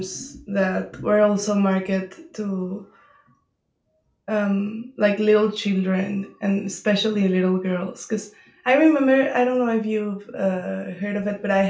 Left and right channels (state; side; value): identical; both; correlation 1.00